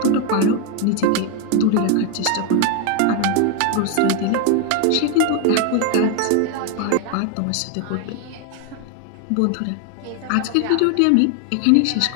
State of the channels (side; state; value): both; different; correlation 0.01